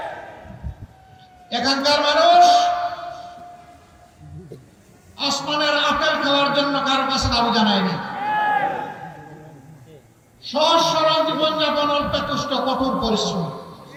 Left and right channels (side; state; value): both; identical; correlation 1.00